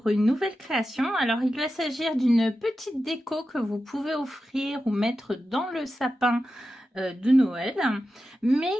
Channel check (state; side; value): normal; both; correlation 0.91